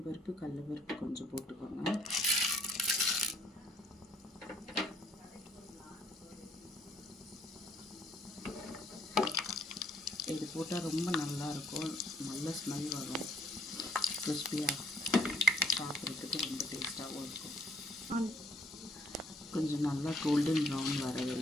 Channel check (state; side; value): normal; both; correlation 0.66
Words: கடலைப்பருப்பு கொஞ்சம் போட்டுக்கோங்க. இது போட்டால் ரொம்ப நல்லாயிருக்கும், நல்ல ஸ்மெல் வரும், கிறிஸ்பியாக சாப்பிட்றதுக்கு ரொம்ப டேஸ்ட்டாகவும் இருக்கும். கொஞ்சம் நல்லா கோல்டன் ப்ரௌன் வர